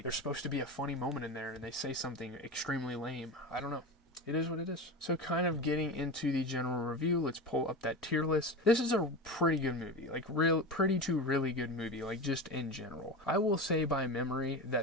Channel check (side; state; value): both; normal; correlation 0.25